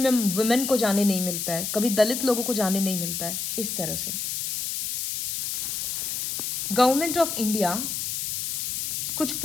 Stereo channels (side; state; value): left; noise; hiss, 2 dB below the sound